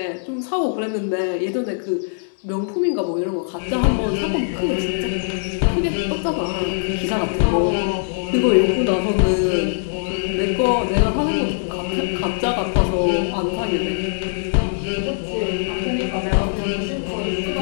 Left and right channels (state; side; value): silent; right; digital silence